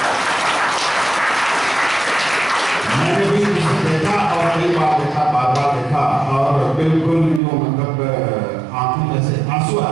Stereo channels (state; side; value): drops out; left; at 7.4 s